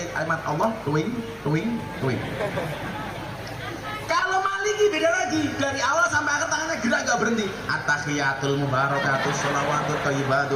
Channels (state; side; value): identical; both; correlation 1.00